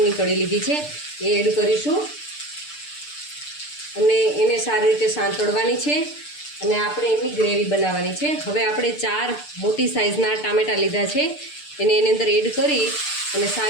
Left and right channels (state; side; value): late; right; 6.7 ms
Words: કળી લીધી છે, એ એડ કરીશું અને એને સારી રીતે સાંતળવાની છે અને આપણે એની ગ્રેવી બનાવવાની છે. હવે આપણે 4 મોટી સાઇઝના ટામેટાં લીધા છે, એને એની અંદર એડ કરી અને